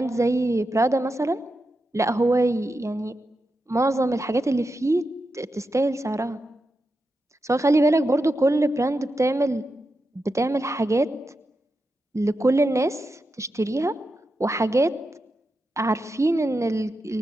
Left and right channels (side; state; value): both; normal; correlation 0.88